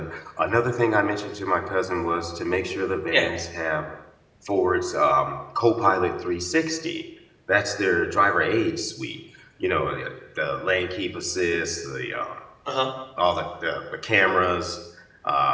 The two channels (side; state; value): both; identical; correlation 1.00